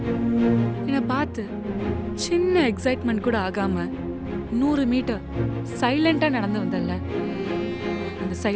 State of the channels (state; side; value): identical; both; correlation 1.00